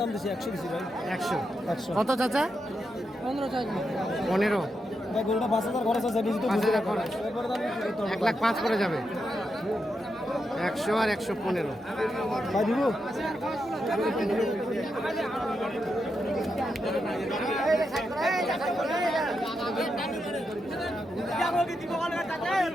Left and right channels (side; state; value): both; normal; correlation 0.85